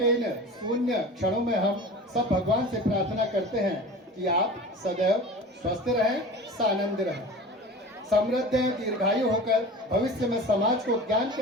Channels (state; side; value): normal; both; correlation 0.36